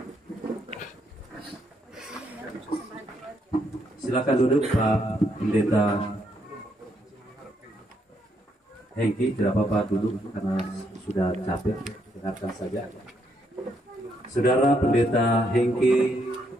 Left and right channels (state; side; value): normal; both; correlation 0.75